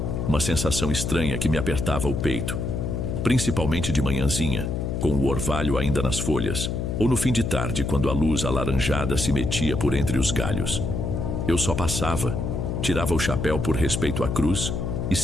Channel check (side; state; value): left; noise; hum, 2 dB below the sound